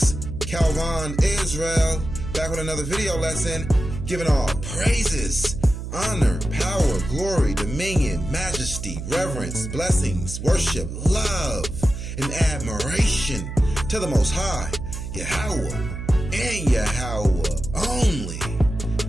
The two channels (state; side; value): noise; right; hum, 7 dB below the sound